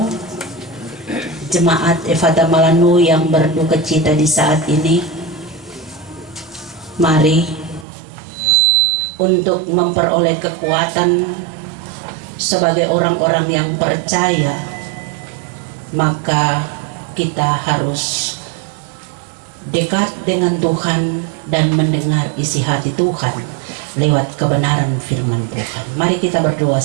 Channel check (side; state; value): left; drops out; at 7.9 s